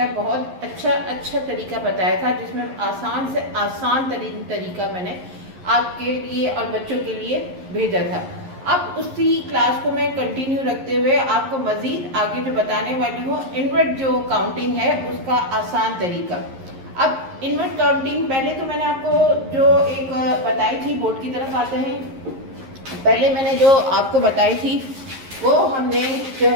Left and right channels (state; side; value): late; left; 11 ms